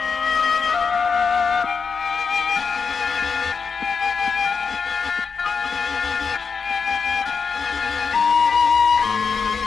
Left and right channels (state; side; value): quieter; right; 5.6 dB